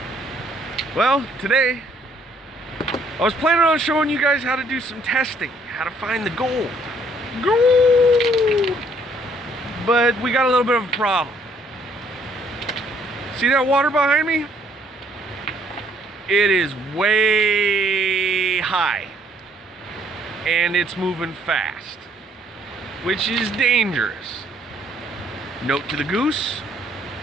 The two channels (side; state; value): both; normal; correlation 0.65